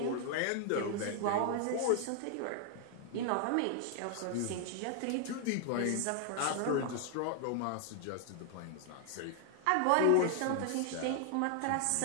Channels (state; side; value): different; both; correlation 0.00